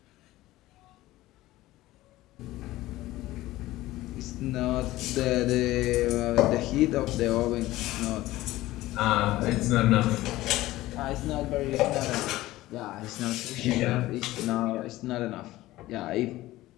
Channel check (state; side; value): quieter; right; 16.9 dB